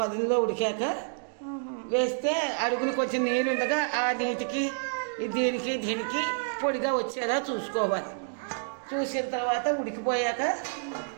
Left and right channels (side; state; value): left; silent; digital silence